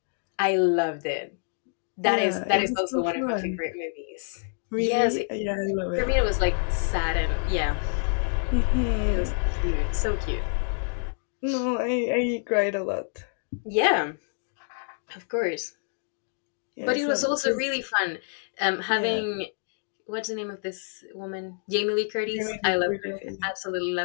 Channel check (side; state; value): right; silent; digital silence